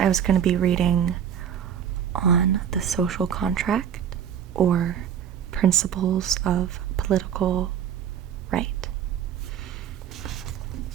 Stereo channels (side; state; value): left; quieter; 8.8 dB